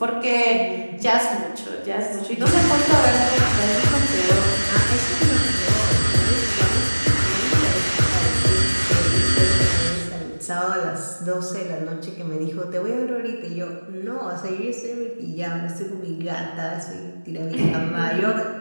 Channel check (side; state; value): both; inverted; correlation -1.00